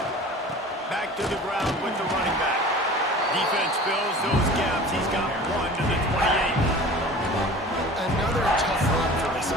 Back to the ground with the running back. Defense fills those gaps. He's got 1 to the 28. Another tough run for this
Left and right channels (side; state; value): both; normal; correlation 0.41